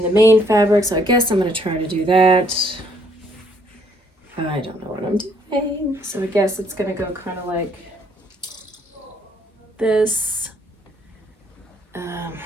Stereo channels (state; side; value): normal; both; correlation 0.66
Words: the main fabric. So I guess I'm going to try to do that. I don't know what I'm doing. So I guess it's going to go kind of like this. And